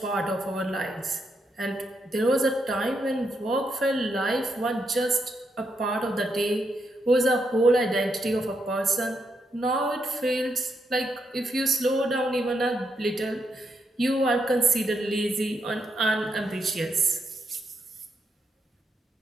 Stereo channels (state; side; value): normal; both; correlation 0.80